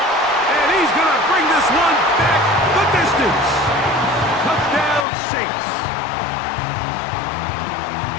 And he's going to bring this one back the distance. Touchdown, Saints.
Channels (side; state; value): right; drops out; at 5.1 s